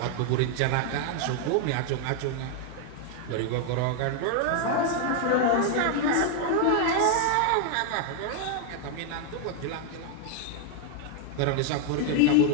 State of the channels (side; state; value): both; different; correlation 0.00